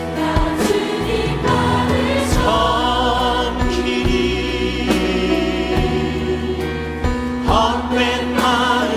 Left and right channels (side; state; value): both; identical; correlation 1.00